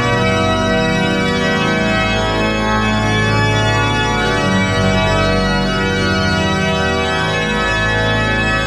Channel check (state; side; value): identical; both; correlation 1.00